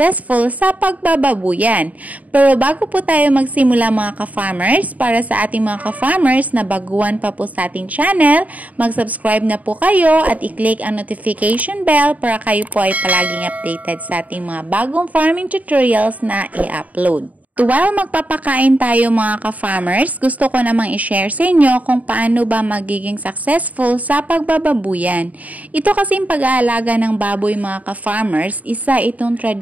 sa pagbababuyan. Pero bago po tayo magsimula mga ka-farmers, para sa ating mga ka-farmers na baguhan pa po sa ating channel, mag-subscribe na po kayo at i-click ang notification bell para kayo po ay palaging updated sa ating mga bagong farming tutorials na i-upload. While magpapakain tayo mga ka-farmers, gusto ko namang i-share sa inyo kung paano ba magiging successful sa pagbababuyan. Ito kasing pag-aalaga ng baboy mga ka-farmers, isa itong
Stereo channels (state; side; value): late; left; 0.072 ms